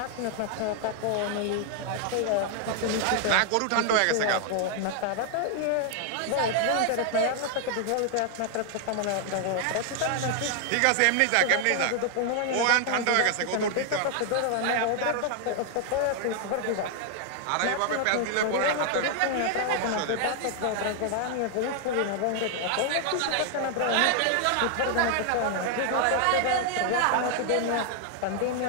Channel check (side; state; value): both; different; correlation 0.00